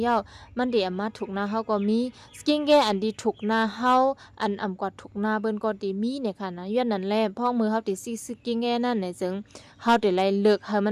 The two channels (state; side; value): identical; both; correlation 1.00